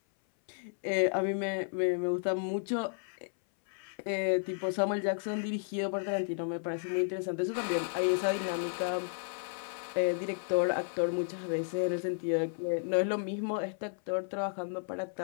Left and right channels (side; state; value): right; silent; 56 dB below the other